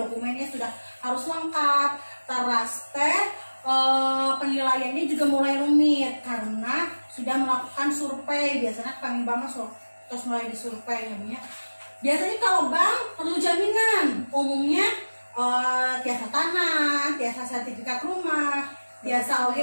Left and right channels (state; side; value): inverted; both; correlation -1.00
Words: sudah harus lengkap. Teras penilaiannya juga mulai rumit karena sudah melakukan survei. Biasanya kami bank terus mulai disurvei namanya. Biasanya kalau bank perlu jaminan, umumnya tiasa tanah, tiasa sertifikat rumah, tiasa